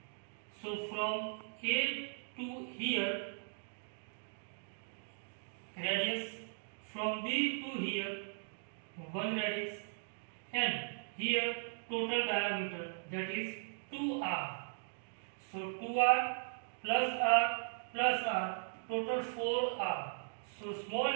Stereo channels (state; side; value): silent; left; digital silence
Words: So from A to here radius, from B to here 1 radix, and here total diameter, that is 2r. So 2r plus r, total 4r. So small